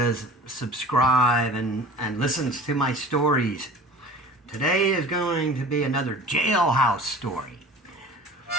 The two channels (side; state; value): both; normal; correlation 0.41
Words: subscribe and listens to my stories. Today is going to be another jailhouse story.